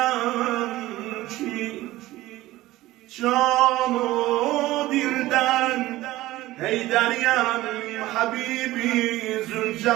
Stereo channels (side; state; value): left; quieter; 17.0 dB